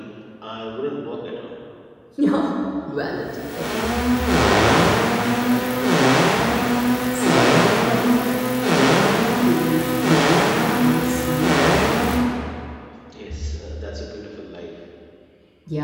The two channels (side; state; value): both; identical; correlation 1.00